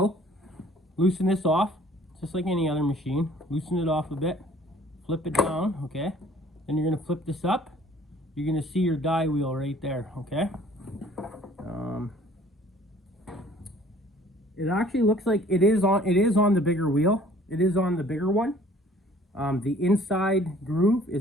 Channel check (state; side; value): normal; both; correlation 0.54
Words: loosen this off, just like any other machine. Loosen it off a bit, flip it down, okay? Then you're gonna flip this up. You're gonna see your die wheel right there, okay? It actually looks like it is on the bigger wheel. It is on the bigger one. The inside groove